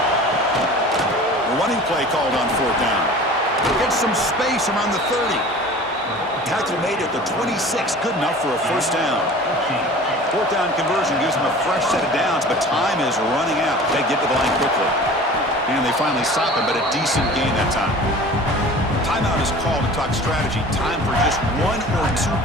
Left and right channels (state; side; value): normal; both; correlation 0.42